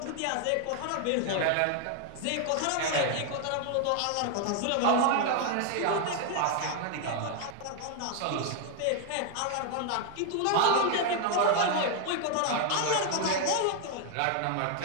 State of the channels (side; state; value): both; different; correlation 0.00